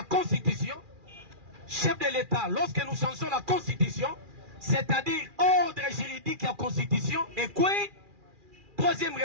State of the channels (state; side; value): late; left; 2.4 ms